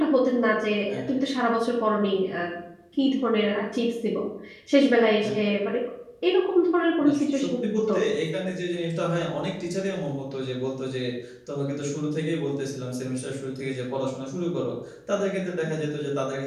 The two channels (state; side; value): identical; both; correlation 1.00